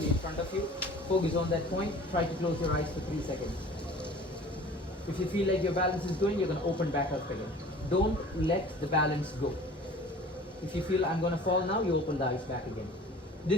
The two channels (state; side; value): normal; both; correlation 0.45